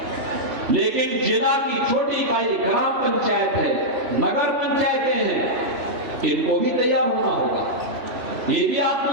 लेकिन जिला की छोटी इकाई ग्राम पंचायत है, नगर पंचायतें हैं, इनको भी तैयार होना होगा। ये भी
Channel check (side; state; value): left; late; 2.6 ms